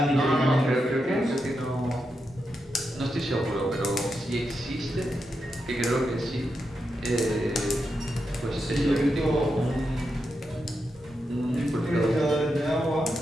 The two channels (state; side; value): normal; both; correlation 0.86